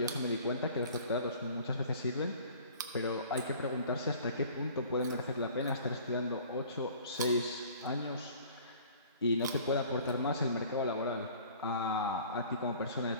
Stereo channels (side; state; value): both; inverted; correlation -0.49